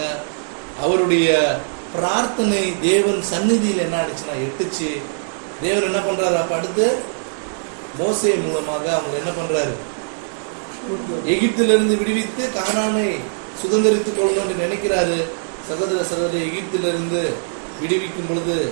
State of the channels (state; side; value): silent; left; digital silence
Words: அவருடைய பிரார்த்தனை தேவன் சந்நிதியில் என்ன ஆயிடுச்சுன்னா எட்டுச்சு. தேவன் என்ன பண்றாரு? அப்ப அடுத்து மோசே மூலமாக அவங்க என்ன பண்றாரு? எகிப்திலிருந்து விடுவித்து கானானை சுதந்திரித்துக் கொள்ளணும்னு நினைக்கிறாரு. சகோதர சகோதரி, எகிப்திலிருந்து விடுவிக்கும் பொழுது